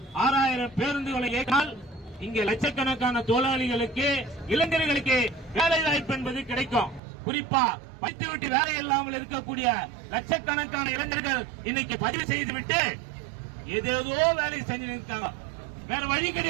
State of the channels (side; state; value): left; drops out; at 7.0 s